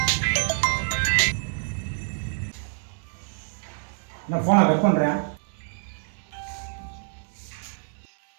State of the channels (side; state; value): left; silent; digital silence